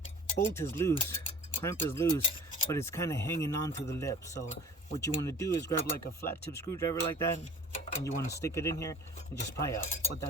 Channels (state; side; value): normal; both; correlation 0.43